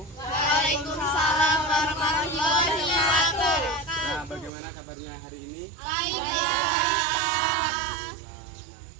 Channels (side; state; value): left; drops out; at 4.5 s